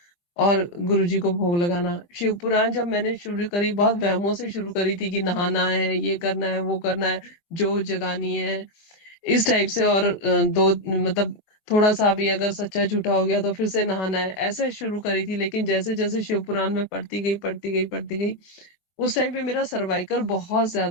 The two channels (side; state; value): right; late; 23 ms